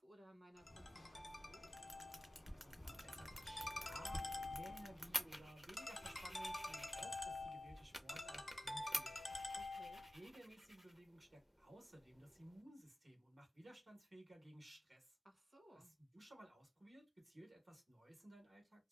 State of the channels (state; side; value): normal; both; correlation 0.93